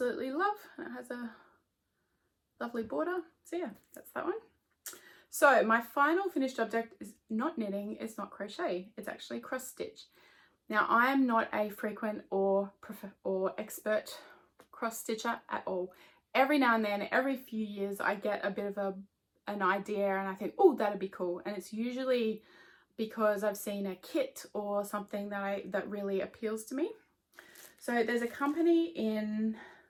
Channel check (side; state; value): both; identical; correlation 1.00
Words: love, and it has a lovely border. So yeah, that's that one. So my final finished object is not knitting, it's not crochet, it's actually cross stitch. Now I am not a frequent or expert cross stitcher at all. Every now and then, every few years, I get a bit of an idea and I think, oh, that'd be cool. And it's usually because I've seen a kit or something that really appeals to me. So there's a company